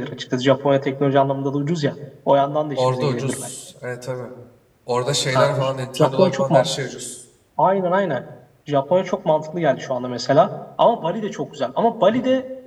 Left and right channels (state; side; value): identical; both; correlation 1.00